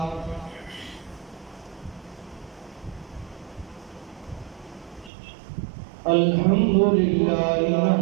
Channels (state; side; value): drops out; left; at 5.1 s